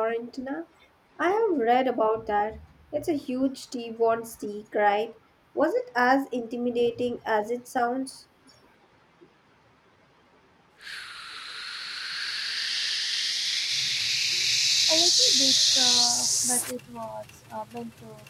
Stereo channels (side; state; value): both; identical; correlation 1.00